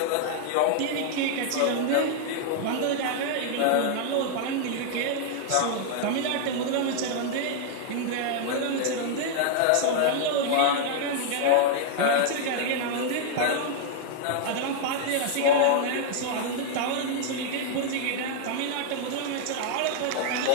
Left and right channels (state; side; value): different; both; correlation -0.01